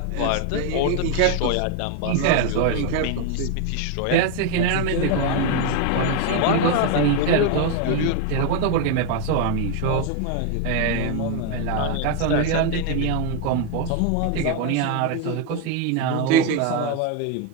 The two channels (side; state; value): both; different; correlation 0.01